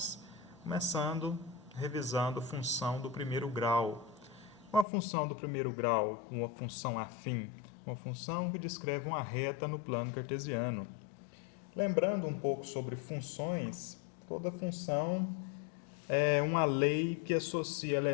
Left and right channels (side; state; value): right; drops out; at 4.9 s